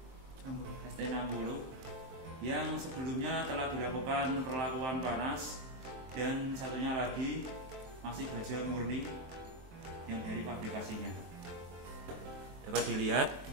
yang sebelumnya telah dilakukan perlakuan panas, dan satunya lagi masih baja murni yang dari pabrikasinya. Dapat dilihat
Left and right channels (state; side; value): late; left; 23 ms